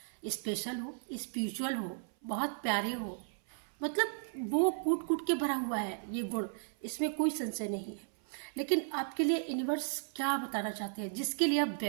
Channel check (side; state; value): left; silent; 54 dB below the other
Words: स्पेशल हो, स्पिरिचुअल हो, बहुत प्यारे हो, मतलब वो कूट कूट के भरा हुआ है ये गुण, इसमें कोई संशय नहीं है। लेकिन आपके लिए यूनिवर्स क्या बताना चाहते हैं, जिसके लिए आप